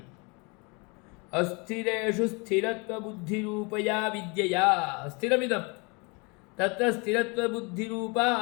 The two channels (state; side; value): quieter; right; 30.1 dB